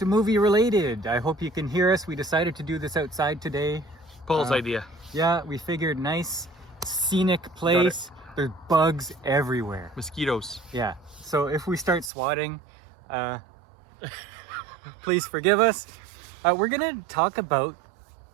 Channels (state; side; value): drops out; left; at 12.1 s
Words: Movie Related. I hope you can hear us. We decided to do this outside today. Paul's idea. Yeah, we figured nice, scenic place. There's bugs everywhere. Mosquitoes. Yeah, so if we start swatting, please forgive us. We're going to talk about